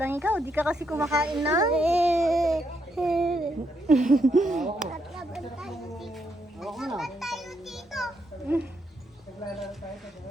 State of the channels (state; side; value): normal; both; correlation 0.78